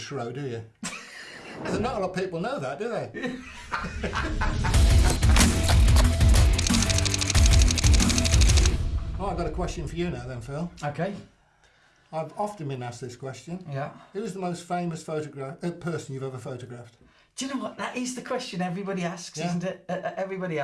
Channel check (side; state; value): both; identical; correlation 1.00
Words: do you? There's not a lot of people know that, do they? Well, I've got a question for you now then, Phil. Okay. I've often been asked this question. Yeah. Who's the most famous person you've ever photographed? Do you know what? That is the question everybody asks, isn't it? Everybody